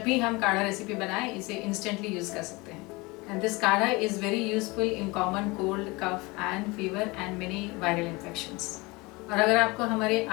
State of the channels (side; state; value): right; quieter; 24.3 dB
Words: भी हम काढ़ा रेसिपी बनाएं इसे इंस्टेंटली यूज़ कर सकते हैं। And this kadha is very useful in common cold, cough and fever and many viral infections. और अगर आपको हमारे